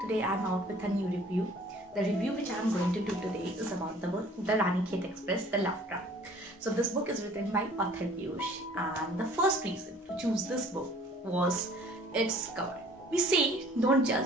today I am out with a new review. The review which I am going to do today is about the book The Ranikhet Express, The Love Trap. So this book is written by author Piyush, and the first reason to choose this book was its cover. We say don't judge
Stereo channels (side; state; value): both; normal; correlation 0.52